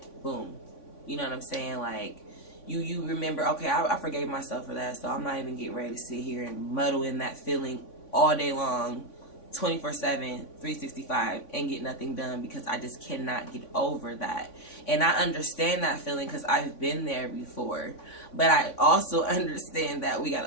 boom. You know what I'm saying? Like, you remember, okay, I forgave myself for that, so I'm not even getting ready to sit here and muddle in that feeling all day long, 24/7, 365, and get nothing done, because I just cannot get over that. And I understand that feeling because I've been there before. But I also understand that we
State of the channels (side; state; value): right; late; 3.5 ms